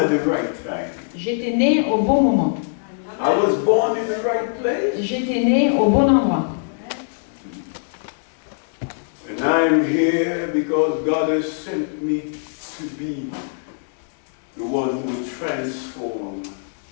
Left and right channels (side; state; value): right; silent; digital silence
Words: the right time. J'étais né au bon moment. I was born in the right place. J'étais né au bon endroit. And I'm here because God has sent me to be the one who will transform